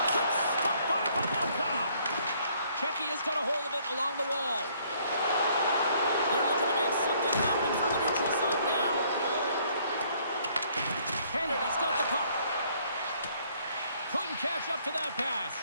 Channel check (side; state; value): both; inverted; correlation -0.63